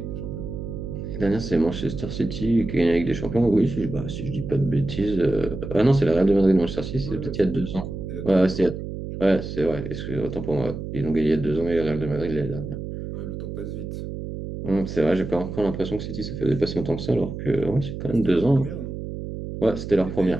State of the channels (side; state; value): right; noise; hum, 7 dB below the sound